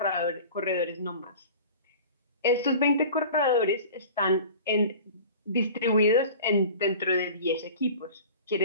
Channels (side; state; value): both; inverted; correlation -0.40